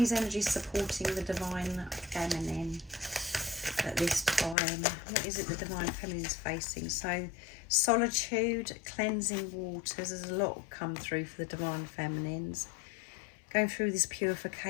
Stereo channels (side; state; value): right; drops out; at 4.5 s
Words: energies supporting the divine feminine at this time? What is it the divine feminine is facing? So solitude, cleansing waters, there's a lot come through for the divine feminines. Going through this